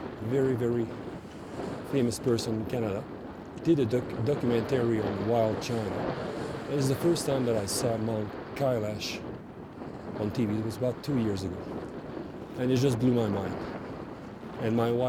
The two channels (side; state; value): both; identical; correlation 1.00